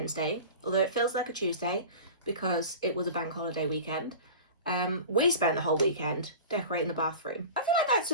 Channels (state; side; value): inverted; both; correlation -0.35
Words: although it feels like a Tuesday because it was a bank holiday weekend. We spent the whole weekend decorating the bathroom. I feel like that's